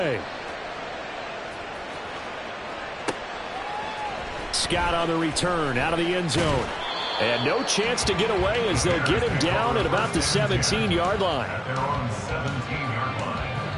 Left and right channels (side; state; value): both; identical; correlation 1.00